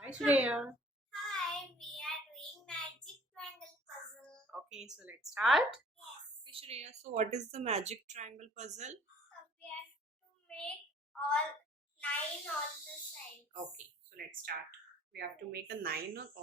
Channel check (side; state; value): both; normal; correlation 0.54